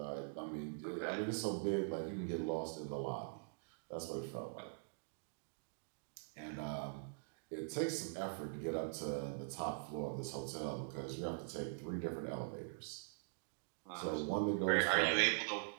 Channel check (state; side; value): silent; left; digital silence